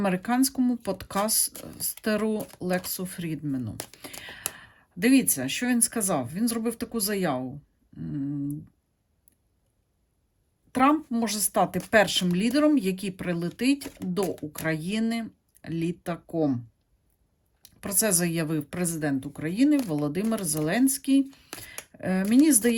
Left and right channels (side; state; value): both; identical; correlation 1.00